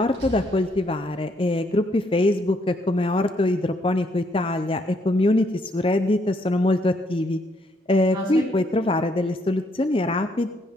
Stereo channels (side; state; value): both; normal; correlation 0.72